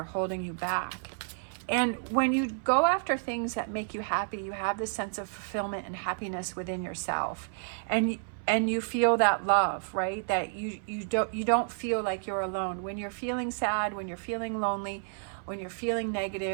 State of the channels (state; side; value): silent; left; 57 dB below the other